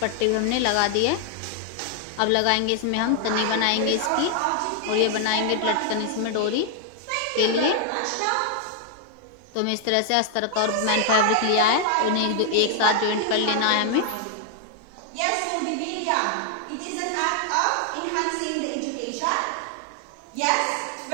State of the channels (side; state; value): both; different; correlation 0.00